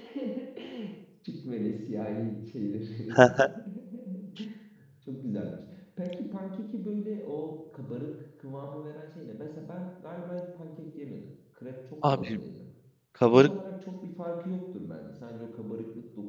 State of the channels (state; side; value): identical; both; correlation 1.00